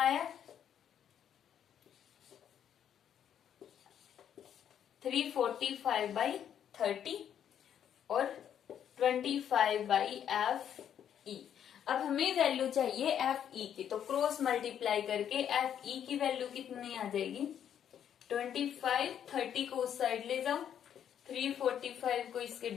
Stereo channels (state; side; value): quieter; right; 9.3 dB